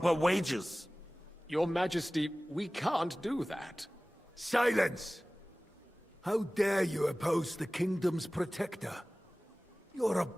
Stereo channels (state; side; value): normal; both; correlation 0.98